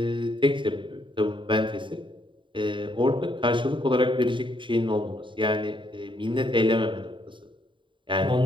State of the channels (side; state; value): left; late; 0.24 ms